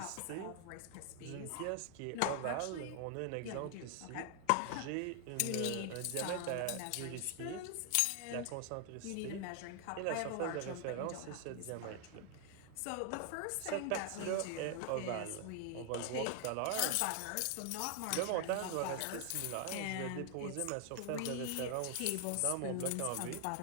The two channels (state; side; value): different; both; correlation 0.00